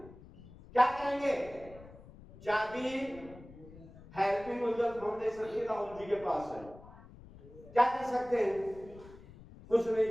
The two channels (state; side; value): noise; left; rumble, 19 dB below the sound